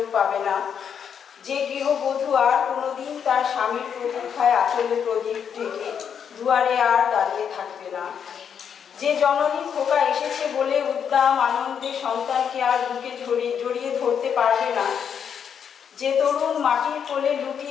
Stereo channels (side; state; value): right; quieter; 7.7 dB